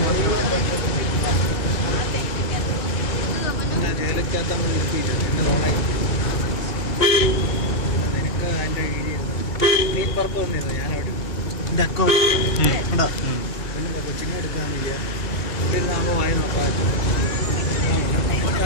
ജയിലക്കകത്ത് നമ്മൾ ഇരുത്തിയില്ല എന്നെ തോളായി നിനക്ക് അതിൻ്റെ കീഴിയിരുന്നു നീ പുറത്ത് വന്നിരുന്നു ഞാനവിടെ എൻ്റെ അക്കൗണ്ട് ഉണ്ടോ പിന്നെ കൊച്ചിനെ എടുക്കാൻ വയ്യ ഇവിടെ ഇരുന്നാകുമ്പോൾ വായി നോക്കാൻ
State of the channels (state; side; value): late; right; 2.0 ms